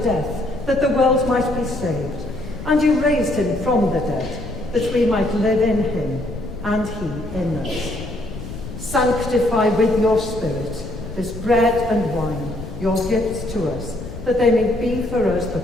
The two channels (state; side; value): noise; left; rumble, 11 dB below the sound